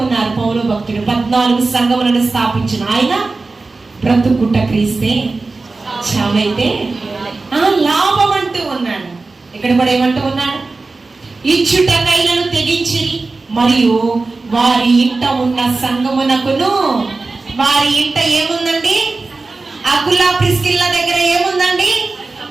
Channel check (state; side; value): quieter; left; 3.7 dB